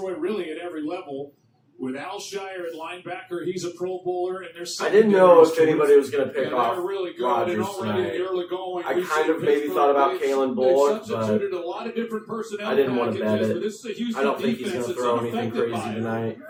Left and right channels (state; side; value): identical; both; correlation 1.00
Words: really at every level. With Al Shire at linebacker, he's a Pro Bowler, and there's. I didn't know if anybody was going to pick off really good, Rodgers already tonight. I kind of maybe thought about Kalen Bullock, but a lot of different personnel I didn't want to bet packages, it. but this is a Houston I don't think he's defense going to that's throw anything unaffected crazy by it. tonight.